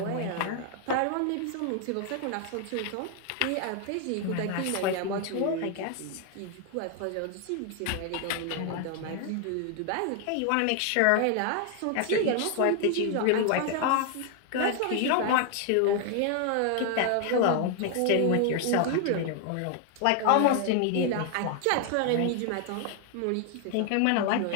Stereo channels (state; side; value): different; both; correlation 0.00